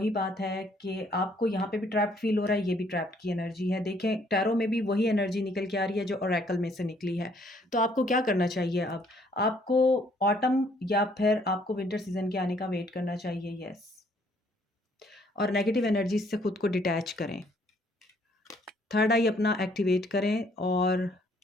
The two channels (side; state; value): both; normal; correlation 0.64